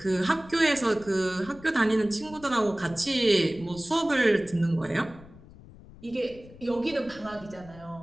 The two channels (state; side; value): noise; left; rumble, 20 dB below the sound